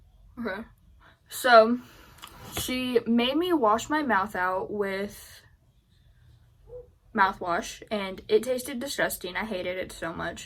okay. So, she made me wash my mouth out with mouthwash, and it tasted disgusting. I hated it so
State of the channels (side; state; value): both; identical; correlation 1.00